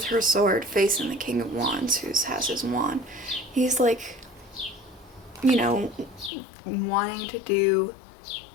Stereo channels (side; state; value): right; drops out; at 6.3 s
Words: her sword facing the King of Wands, who has his wand. He's like, you know, wanting to do,